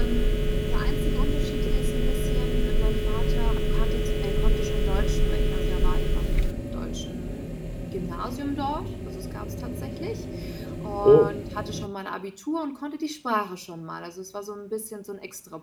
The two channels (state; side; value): identical; both; correlation 1.00